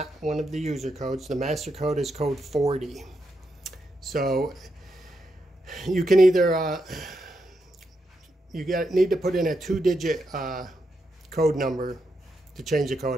one of the user codes. The master code is code 40. So you can either need to put in a 2-digit code number to change the code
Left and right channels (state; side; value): normal; both; correlation 0.83